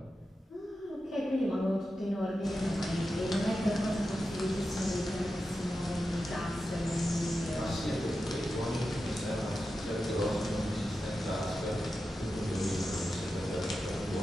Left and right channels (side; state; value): both; normal; correlation 0.91